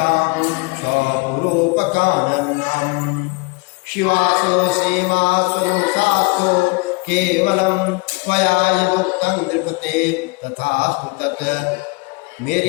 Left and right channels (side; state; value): right; quieter; 27.9 dB